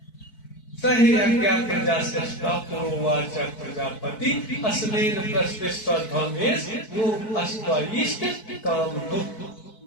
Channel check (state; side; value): late; right; 4.6 ms